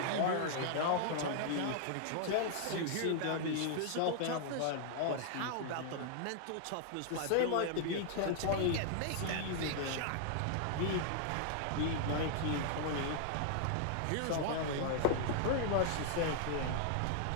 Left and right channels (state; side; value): different; both; correlation -0.01